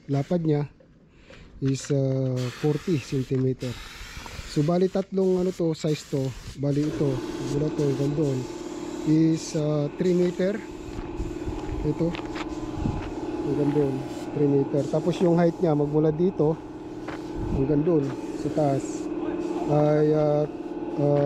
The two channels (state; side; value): identical; both; correlation 1.00